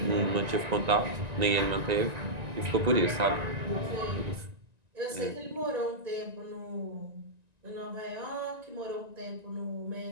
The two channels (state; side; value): late; left; 1.9 ms